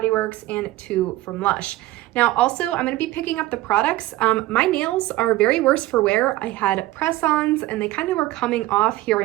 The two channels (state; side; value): quieter; left; 17.0 dB